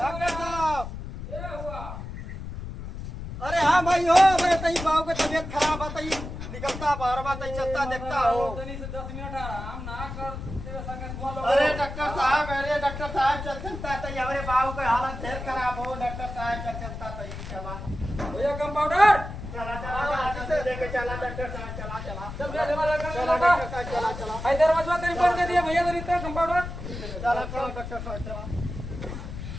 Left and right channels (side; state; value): left; noise; rumble, 8 dB below the sound